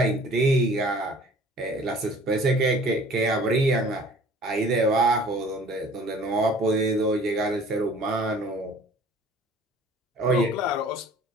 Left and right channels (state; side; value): normal; both; correlation 0.50